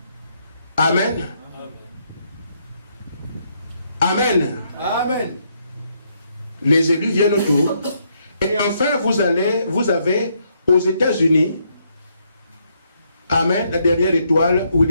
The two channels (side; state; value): both; inverted; correlation -0.74